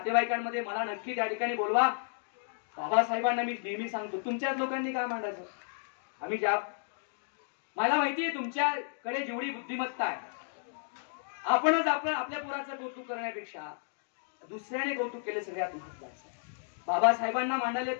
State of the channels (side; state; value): right; silent; digital silence